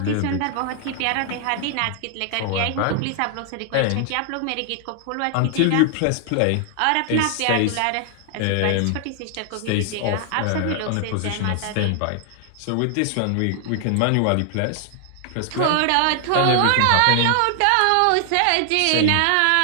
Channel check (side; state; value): both; different; correlation 0.00